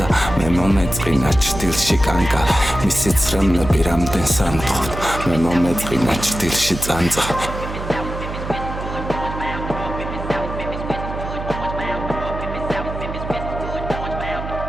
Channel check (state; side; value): noise; right; hum, 8 dB below the sound